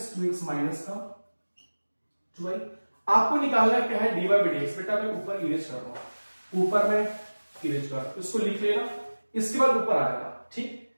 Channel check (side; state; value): both; inverted; correlation -1.00